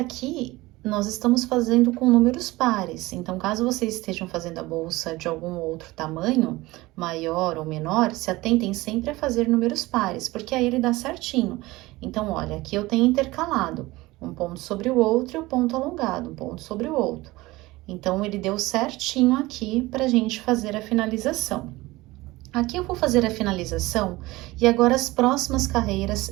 nós estamos fazendo com números pares. Então, caso vocês estejam fazendo a bolsa de algum outro tamanho, maior ou menor, se atentem sempre a fazer números pares, porque aí ele dá certinho. Então, olha, aqui eu tenho intercalado um ponto sobre o outro e o ponto alongado, um ponto sobre o outro. Então, ele deu certinho aqui pra gente fazer a finalização. Aqui eu vou fazer a finalização e agora as próximas carreiras,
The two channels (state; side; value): quieter; left; 20.0 dB